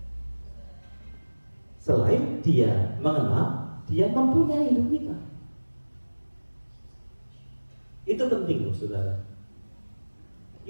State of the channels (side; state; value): both; inverted; correlation -1.00